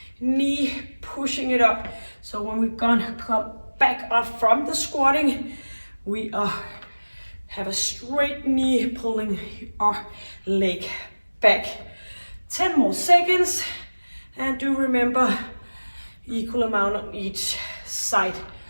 knee, pushing it up. So when we're gonna come back up from the squatting, we have a straight knee pulling our leg back. 10 more seconds, and do remember equal amount on each side.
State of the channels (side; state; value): both; inverted; correlation -1.00